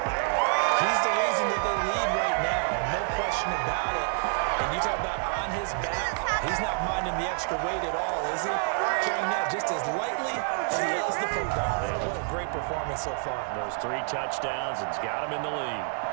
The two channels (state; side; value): silent; left; 58 dB below the other